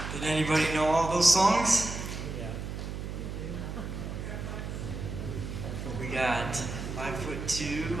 Did anybody know all those songs? We got 5'2",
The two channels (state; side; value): noise; right; hum, 6 dB below the sound